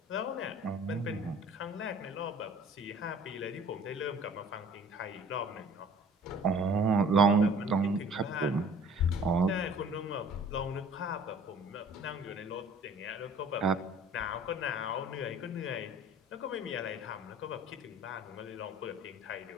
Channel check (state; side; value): normal; both; correlation 0.49